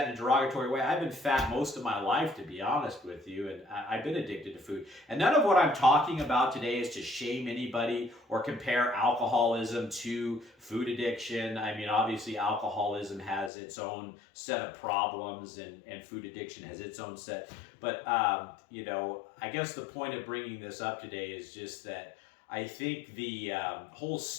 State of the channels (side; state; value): right; drops out; at 13.5 s